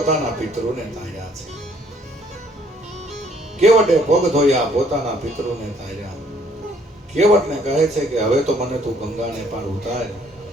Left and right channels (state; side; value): normal; both; correlation 0.63